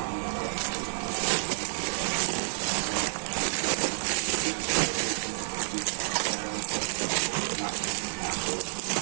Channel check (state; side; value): silent; left; 58 dB below the other